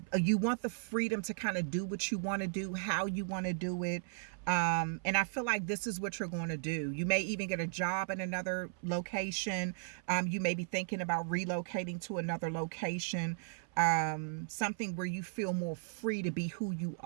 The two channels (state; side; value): silent; left; 54 dB below the other